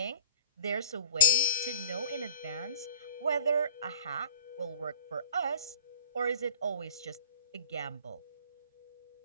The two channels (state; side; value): inverted; both; correlation -0.35